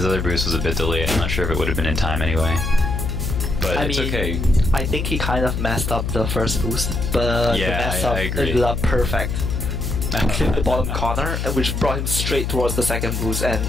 other boost was a bit delayed. I'm not sure if it would have been in time anyway. But it's okay. I think he kind of messed up the first boost. But yeah, the mess up ended up perfect. Clipped the bottom corner, which brought him straight towards the second boost. And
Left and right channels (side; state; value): left; noise; hum, 2 dB below the sound